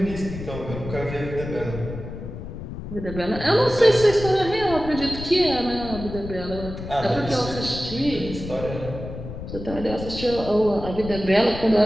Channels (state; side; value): noise; left; rumble, 9 dB below the sound